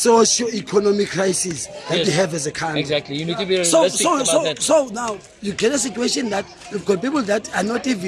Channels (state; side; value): identical; both; correlation 1.00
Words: crisis that we have as a country. Exactly. You need to be realistic about that. So now you get a situation that you've got people that are not